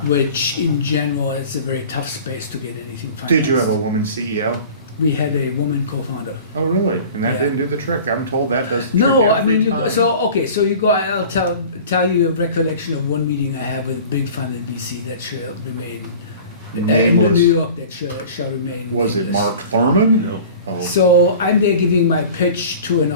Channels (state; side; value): inverted; both; correlation -0.41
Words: which in general is a very tough space to get anything financed. Did you have a woman CEO? We had a woman co-founder. Oh, really? And that Yeah. didn't do the trick. I'm told that does the trick No, I every mean, time. so you go. I'll tell you a recollection of one meeting I had with a big fund in BC that shall remain in Nameless? New York that shall remain. Was it nameless. Mark Thurman? No. Oh. So I'm there giving my pitch to an